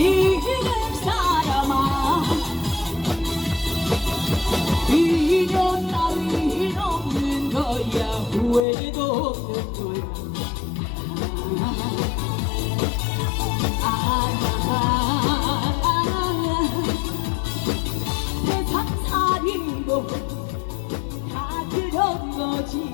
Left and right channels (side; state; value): right; drops out; at 8.7 s